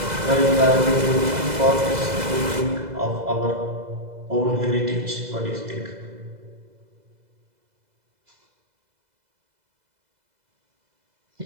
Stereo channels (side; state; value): left; late; 2.0 ms